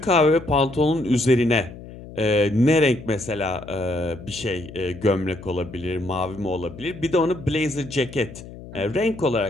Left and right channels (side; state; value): left; noise; hum, 15 dB below the sound